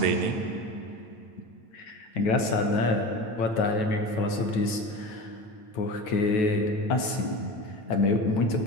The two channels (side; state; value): right; late; 9.3 ms